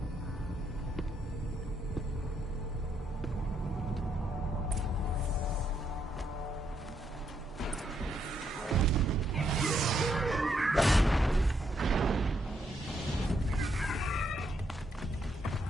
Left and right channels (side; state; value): both; normal; correlation 0.76